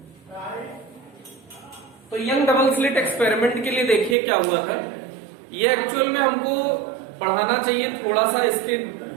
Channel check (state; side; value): drops out; left; at 4.2 s